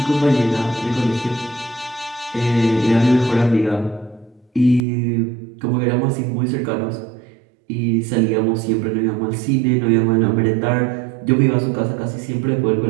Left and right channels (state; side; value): drops out; left; at 4.8 s